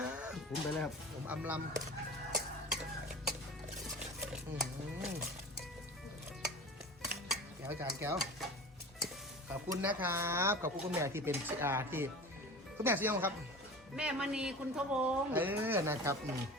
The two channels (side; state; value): both; normal; correlation 0.35